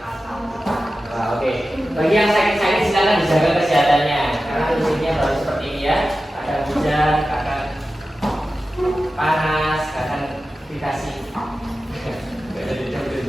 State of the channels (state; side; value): normal; both; correlation 0.94